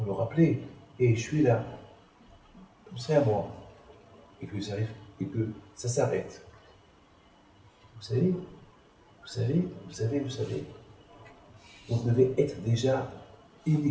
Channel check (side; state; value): both; identical; correlation 1.00